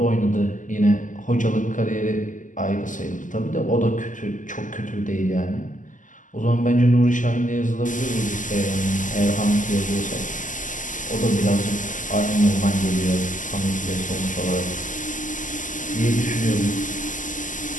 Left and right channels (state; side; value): late; right; 0.37 ms